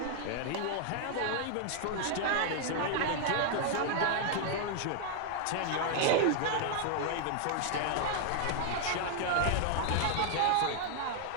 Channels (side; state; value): both; different; correlation 0.00